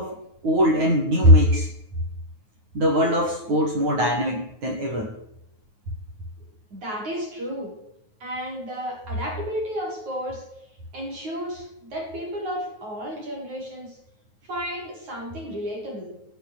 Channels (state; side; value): late; left; 9.4 ms